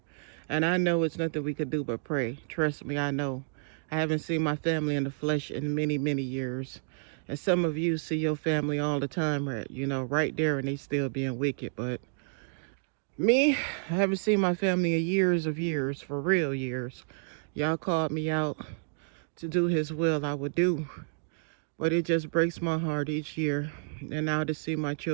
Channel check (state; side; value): silent; left; digital silence